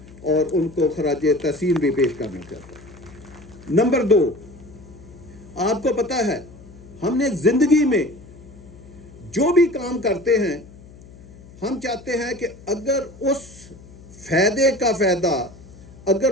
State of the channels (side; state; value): left; noise; hum, 20 dB below the sound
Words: और उनको खराज तहसीन भी पेश करना चाहता हूँ। नंबर 2, आपको पता है हमने ज़िंदगी में जो भी काम करते हैं हम चाहते हैं कि अगर उस फ़ायदे का फ़ायदा,